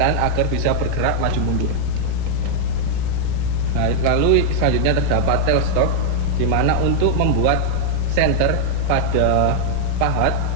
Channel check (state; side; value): different; both; correlation -0.01